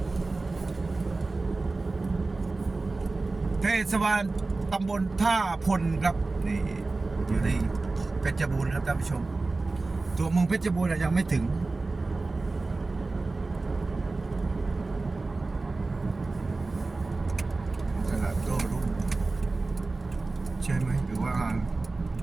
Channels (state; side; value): quieter; left; 3.5 dB